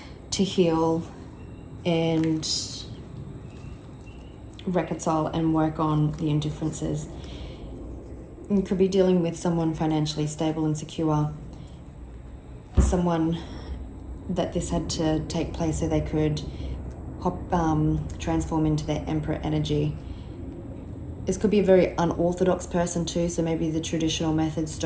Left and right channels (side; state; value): both; identical; correlation 1.00